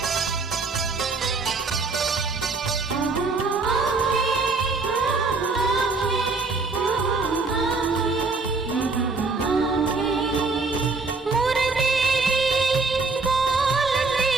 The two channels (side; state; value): left; quieter; 4.0 dB